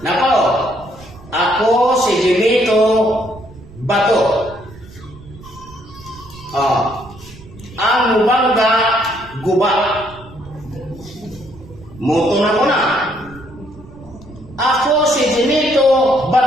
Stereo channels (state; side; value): noise; right; rumble, 19 dB below the sound